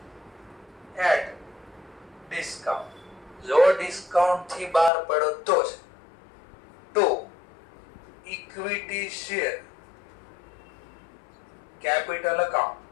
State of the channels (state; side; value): drops out; right; at 4.9 s